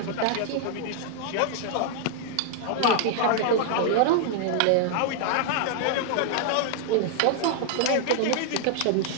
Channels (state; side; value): different; both; correlation 0.00